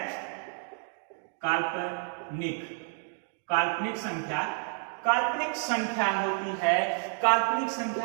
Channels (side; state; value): left; silent; 58 dB below the other